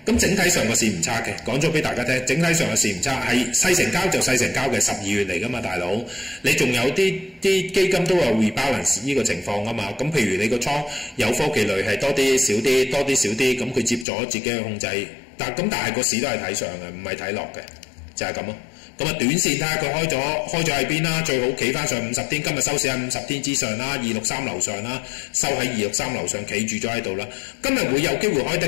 咁整體上個市唔差嘅，講咗俾大家聽，整體上個市唔差，係細成交就細成交嘅12月嚟噶嘛，大佬。你仲有啲基金都有 rebalance 呢個情況噶嘛。咁譬如你個倉有科技類係多啲少啲，多啲少啲，咁佢接咗自己去控制。但係個市都係睇上嘅，唔係睇落嘅，就係咁咯。咁啊，短線睇下佢開咗喺邊啦，最好企翻上50天，今日收市喺50天之上啦，263樓上啦，收喺263樓上企住咗喺度啦。今日會有機會開得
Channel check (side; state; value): right; drops out; at 14.1 s